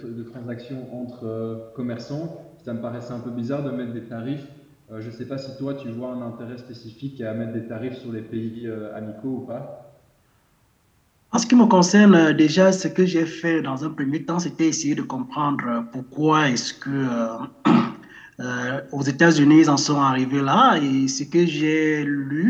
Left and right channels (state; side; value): identical; both; correlation 1.00